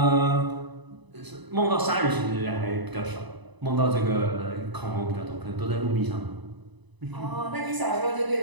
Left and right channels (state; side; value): late; left; 1.0 ms